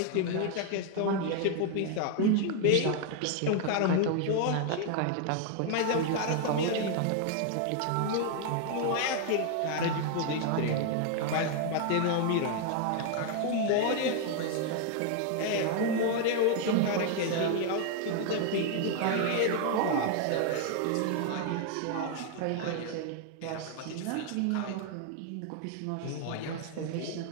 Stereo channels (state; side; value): different; both; correlation 0.00